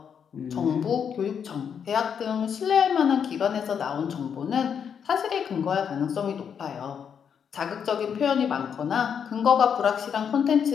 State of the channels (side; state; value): right; quieter; 7.5 dB